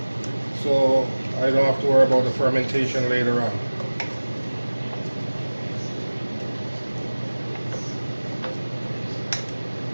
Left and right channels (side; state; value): both; inverted; correlation -1.00